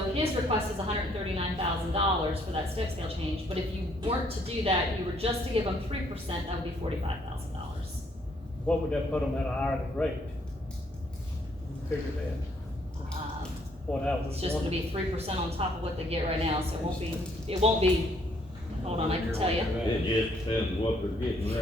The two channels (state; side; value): normal; both; correlation 0.67